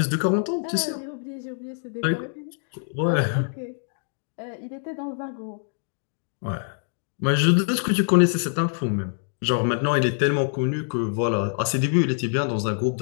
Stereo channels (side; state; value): right; silent; digital silence